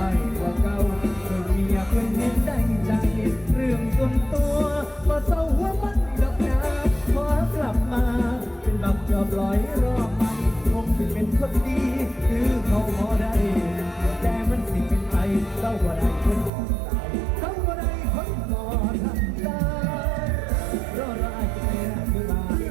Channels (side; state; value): left; drops out; at 16.5 s